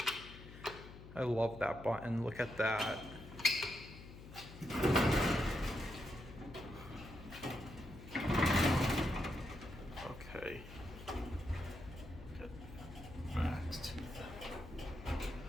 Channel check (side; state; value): left; noise; hum, 15 dB below the sound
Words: I love that button. Look at that. Okay. Next.